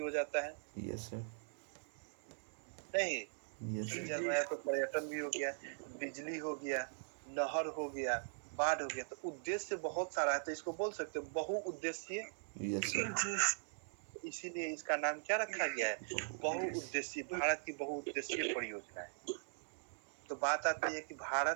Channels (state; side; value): silent; left; 50 dB below the other